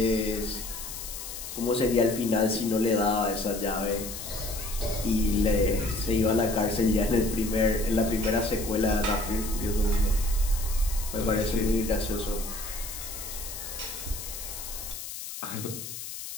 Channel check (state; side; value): noise; left; hiss, 9 dB below the sound